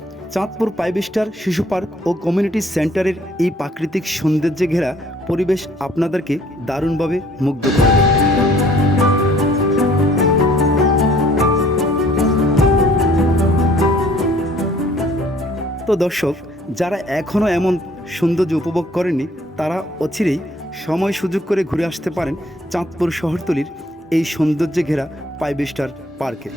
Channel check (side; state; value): both; normal; correlation 0.58